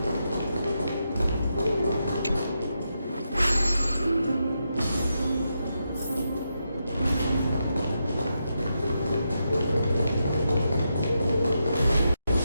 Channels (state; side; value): inverted; both; correlation -0.85